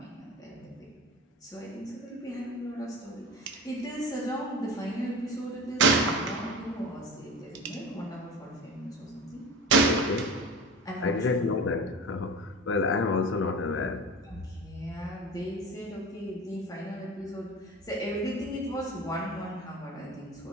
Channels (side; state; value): both; normal; correlation 0.33